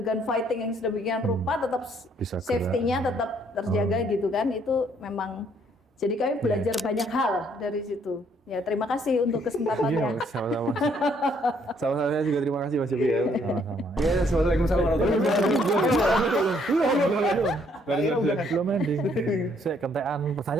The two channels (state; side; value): normal; both; correlation 0.67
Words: fighting yang sedemikian rupa tetap Bisa safety-nya tetap terjaga gitu kan. Itu memang, jadi kami belajar banyak hal dari situ. Ya, terima kasih untuk kesempatannya. Sama-sama. Sama-sama, saya juga terima kasih Mas Yopi ya. Sama-sama. Iya, assalamualaikum warahmatullahi wabarakatuh. Belum ending. Saya kentean